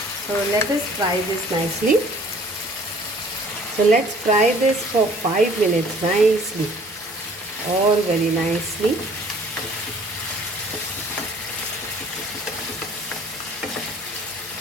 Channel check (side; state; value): both; normal; correlation 0.54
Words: So let us fry this nicely. So let's fry this for 5 minutes nicely, all very nicely.